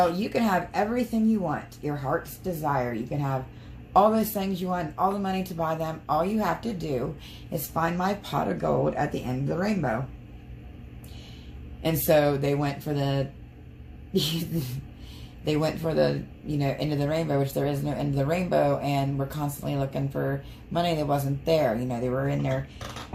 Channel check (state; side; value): identical; both; correlation 1.00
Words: you can have everything you want, your heart's desire. You can have all those things you want, all the money to buy them. All you have to do is find my pot of gold at the end of the rainbow. And so they went for the, you know, end of the rainbow, which there is no end of the rainbow, and were constantly looking for money that wasn't there. You know, they were in their